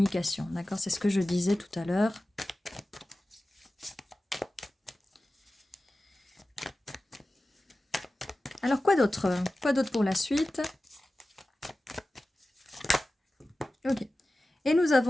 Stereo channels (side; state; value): both; normal; correlation 0.95